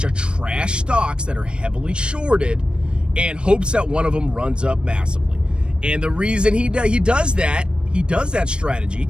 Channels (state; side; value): late; left; 0.055 ms